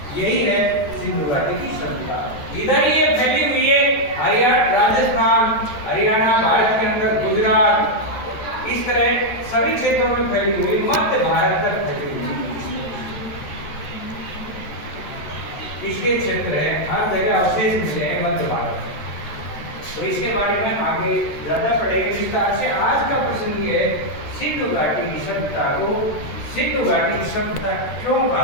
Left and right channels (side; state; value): right; late; 13 ms